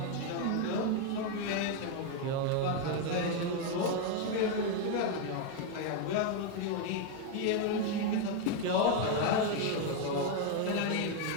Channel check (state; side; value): different; both; correlation 0.01